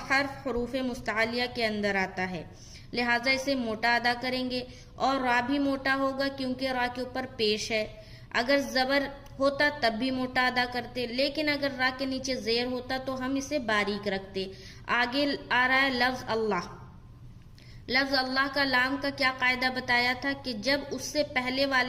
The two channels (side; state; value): both; identical; correlation 1.00